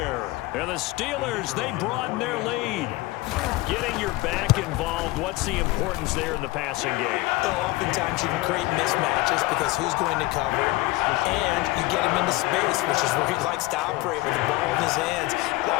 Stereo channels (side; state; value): right; quieter; 20.2 dB